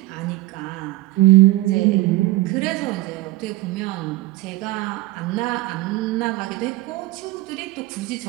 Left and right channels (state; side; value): quieter; left; 18.3 dB